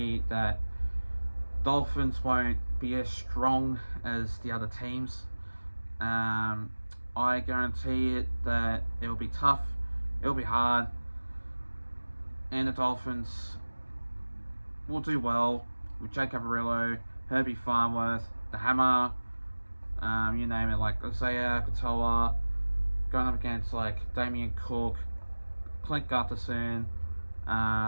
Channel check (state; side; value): inverted; both; correlation -1.00